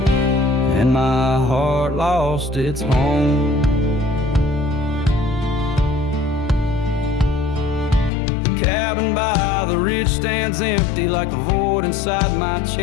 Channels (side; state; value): right; drops out; at 8.1 s